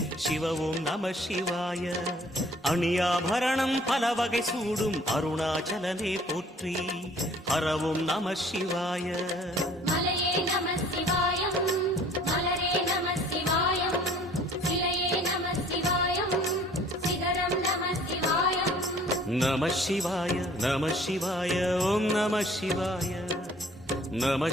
சிவ ஓம் நம சிவாய அணியாபரணம் பல வகை சூடும் அருணாச்சலனே போற்றி ஹரவோம் நம சிவாய மலையே நம சிவாயம் மலரே நம சிவாயம் சிலையே நம சிவாயம் சிகரம் நம சிவாயம் நம சிவாய நம சிவாய ஓம் நம சிவாய நம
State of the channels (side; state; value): both; normal; correlation 0.54